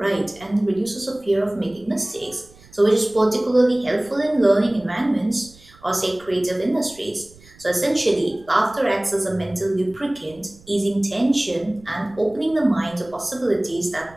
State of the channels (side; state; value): right; noise; rumble, 25 dB below the sound